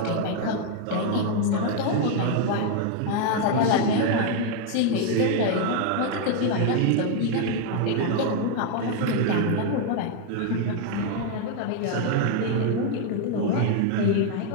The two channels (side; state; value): both; different; correlation 0.00